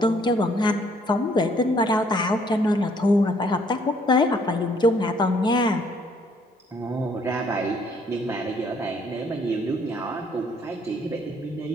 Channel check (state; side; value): normal; both; correlation 0.64